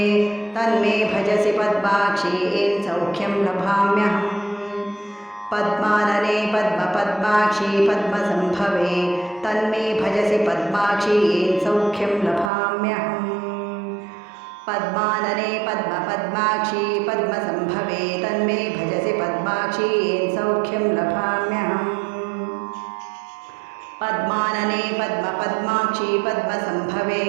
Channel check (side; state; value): left; drops out; at 12.5 s